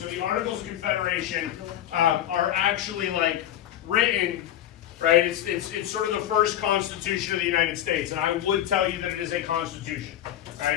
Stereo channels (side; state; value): right; quieter; 12.0 dB